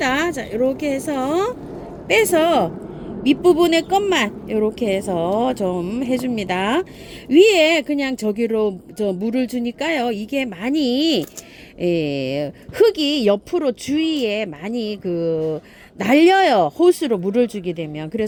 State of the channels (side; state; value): both; identical; correlation 1.00